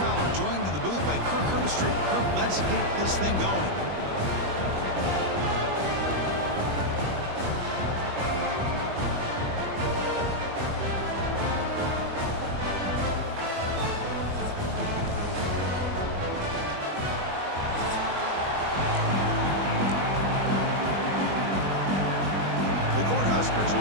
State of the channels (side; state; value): left; late; 21 ms